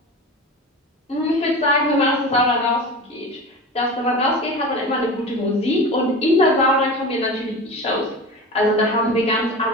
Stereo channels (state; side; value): normal; both; correlation 0.31